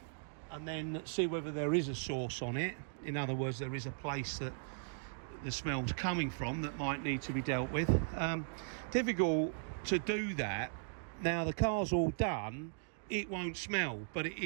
and then see whether there is a source on it. In other words, there is a place that the smell's coming from that might need to be dealt with. Difficult to do that. Now the car's all done, it won't smell, but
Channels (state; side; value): silent; left; digital silence